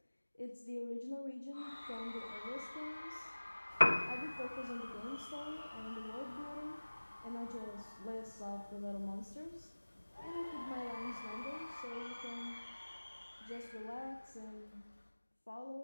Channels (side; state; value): both; inverted; correlation -1.00